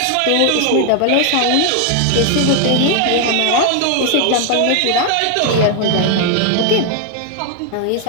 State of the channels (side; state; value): both; different; correlation 0.00